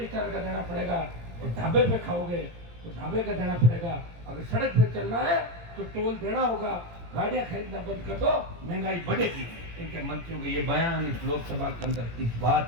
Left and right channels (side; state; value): left; late; 17 ms